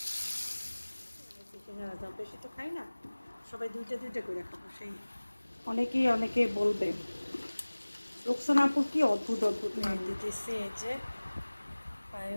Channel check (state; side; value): inverted; both; correlation -1.00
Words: বেশি তো খাই না, সবাই দুইটা দুইটা করে খাবো। সেই অনেকে বলবে রোকসানাপুর কি অদ্ভুত অদ্ভুত নাম দিতেছে। এই যে